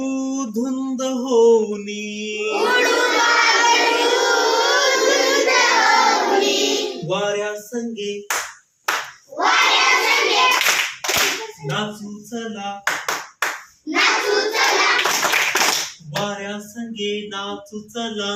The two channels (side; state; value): both; identical; correlation 1.00